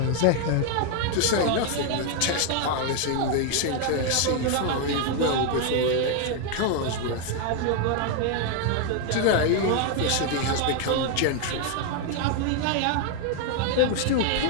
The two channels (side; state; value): both; different; correlation 0.01